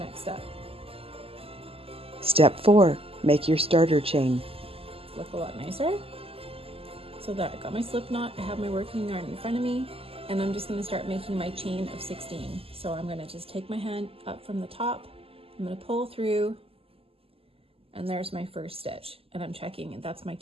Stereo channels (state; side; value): late; left; 0.28 ms